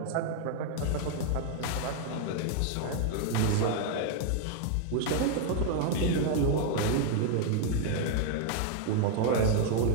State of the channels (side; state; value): both; different; correlation 0.00